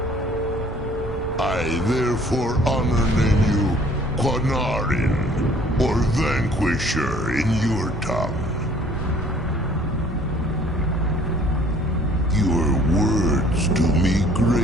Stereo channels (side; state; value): both; normal; correlation 0.56